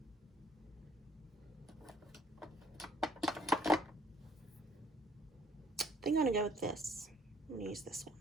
I think I'm going to go with this. I'm going to use this one.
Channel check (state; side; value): normal; both; correlation 0.61